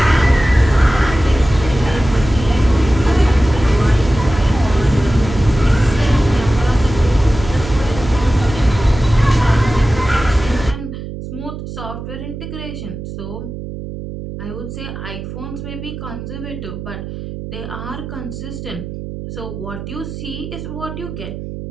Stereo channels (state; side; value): noise; right; hum, 9 dB below the sound